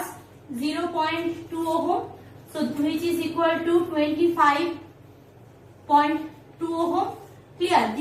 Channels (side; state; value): both; identical; correlation 1.00